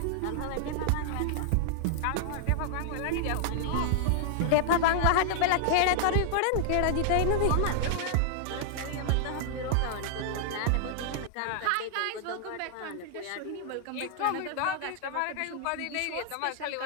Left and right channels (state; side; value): different; both; correlation -0.01